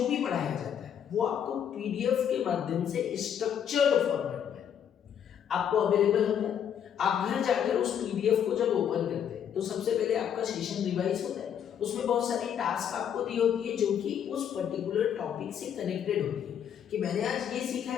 भी पढ़ाया जाता है वो आपको पीडीएफ के माध्यम से स्ट्रक्चर्ड फॉर्मेट में आपको अवेलेबल होता है। आप घर जाकर उस पीडीएफ को जब ओपन करते हैं तो सबसे पहले आपका सेशन रिवाइज होता है। उसमें बहुत सारी टास्क आपको दी होती है जो कि उस पर्टिकुलर टॉपिक से कनेक्टेड होती है कि मैंने आज ये सीखा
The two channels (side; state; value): right; quieter; 8.8 dB